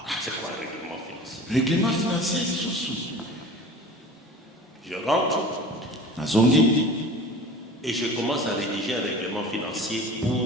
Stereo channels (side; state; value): both; normal; correlation 0.39